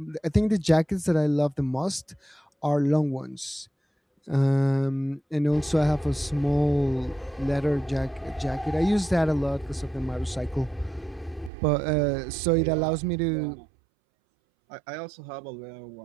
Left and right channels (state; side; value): drops out; left; at 11.5 s